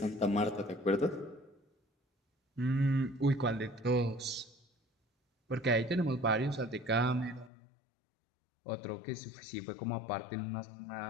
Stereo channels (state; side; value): drops out; right; at 7.5 s